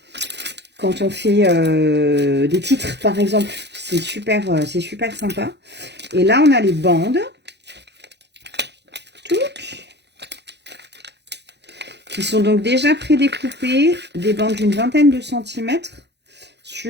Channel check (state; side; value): late; left; 0.50 ms